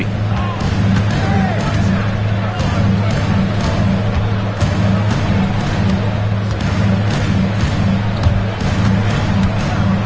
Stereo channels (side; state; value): both; identical; correlation 1.00